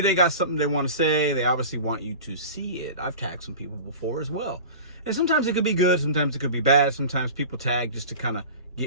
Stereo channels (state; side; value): inverted; both; correlation -0.35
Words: got something they want to say. They obviously want you to see it. I've tagged some people before as well. And sometimes it could be good. Sometimes it could be bad. Sometimes people tag just to kind of